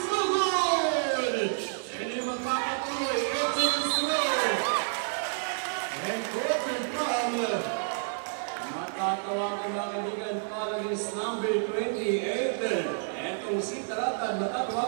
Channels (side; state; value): left; silent; 58 dB below the other